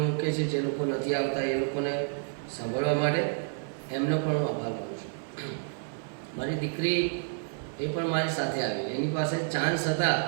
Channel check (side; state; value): left; silent; 58 dB below the other